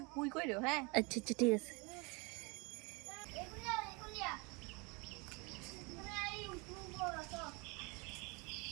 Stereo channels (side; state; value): left; quieter; 29.0 dB